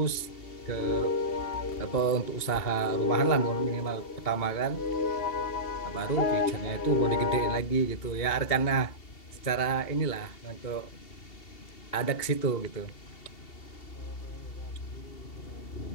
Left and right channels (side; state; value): right; late; 2.8 ms